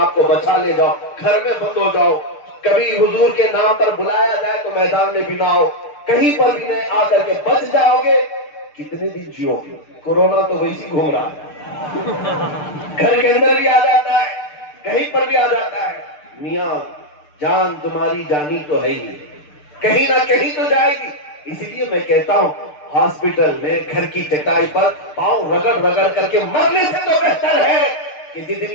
کو بچا لے جاؤ، گھر میں بند ہو جاؤ، کبھی حضور کے نام پر بلایا جائے تو میدان میں بھی نہ آؤ، کہیں پر بھی نہیں آ کر کے بچ جاؤ گے، کتنے دن جیو گے؟ کورونا تو ویسی گھوم رہا ہے، گھر کے اندر بھی آ جاتا ہے، کہیں پر بھی آ جاتا ہے۔ میاں جان تمہاری جانی تو ہے ہی، کہیں نہ کہیں تو جائے گی۔ اسی لیے میں کہتا ہوں ہاسپٹل میں گھر کی چٹائی پر پاؤں رگڑ رگڑ کر کے مرنے سے تو بہتر ہے کہ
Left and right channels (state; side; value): late; right; 6.7 ms